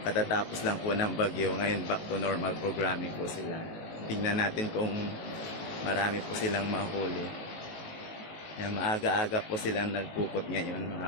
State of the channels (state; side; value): late; right; 19 ms